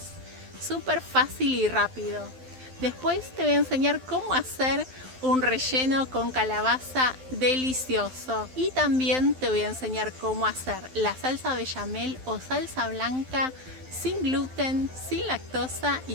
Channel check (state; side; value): late; left; 12 ms